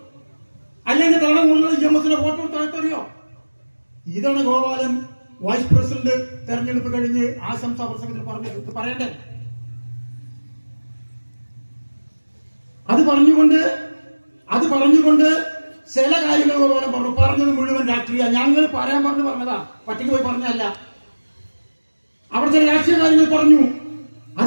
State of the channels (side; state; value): both; inverted; correlation -1.00